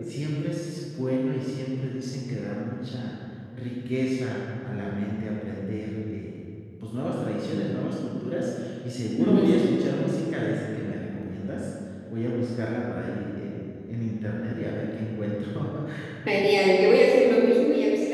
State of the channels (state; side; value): identical; both; correlation 1.00